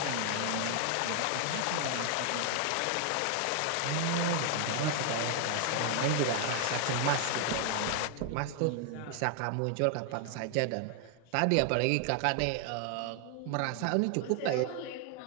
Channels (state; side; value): different; both; correlation 0.00